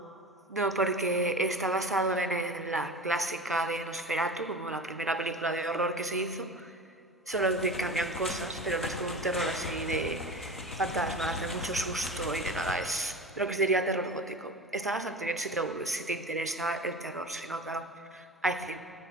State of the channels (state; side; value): normal; both; correlation 0.33